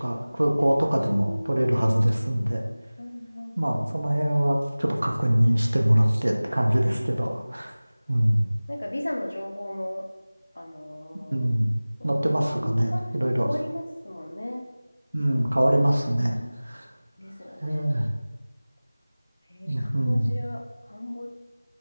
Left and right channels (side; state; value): both; inverted; correlation -0.99